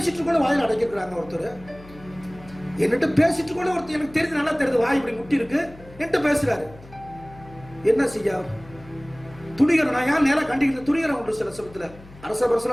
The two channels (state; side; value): noise; left; hum, 20 dB below the sound